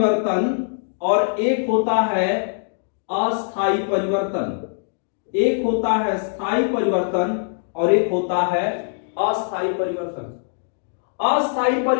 और एक होता है अस्थायी परिवर्तन। एक होता है स्थायी परिवर्तन और एक होता है अस्थायी परिवर्तन। अस्थायी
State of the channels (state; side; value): silent; right; digital silence